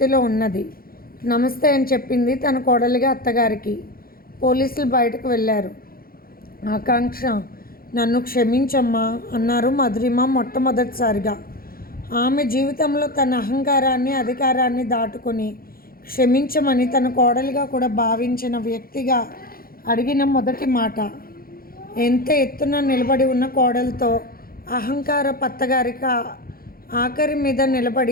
ఉన్నది. నమస్తే అని చెప్పింది తన కోడలిగా అత్తగారికి. పోలీసులు బయటకు వెళ్ళారు. ఆకాంక్ష, నన్ను క్షమించమ్మా అన్నారు మధురిమ మొట్టమొదటిసారిగా. ఆమె జీవితంలో తన అహంకారాన్ని అధికారాన్ని దాటుకొని క్షమించమని తన కోడలిగా కూడా భావించిన వ్యక్తిగా అడిగిన మొదటి మాట. ఎంత ఎత్తున నిలబడి ఉన్న కోడలతో అహంకార పత్తగారికి ఆఖరి మీద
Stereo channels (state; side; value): late; right; 0.43 ms